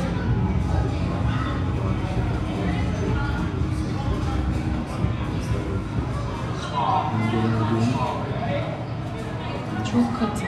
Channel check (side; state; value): both; identical; correlation 1.00